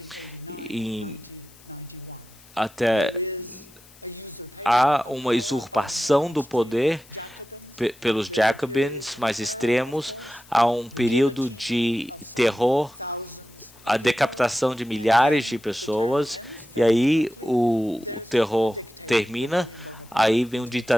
Até há uma usurpação do poder pelos Jacobins mais extremos, há um período de terror, a decapitação de milhares de pessoas, e aí o terror termina, aí vem um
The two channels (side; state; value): left; noise; hiss, 25 dB below the sound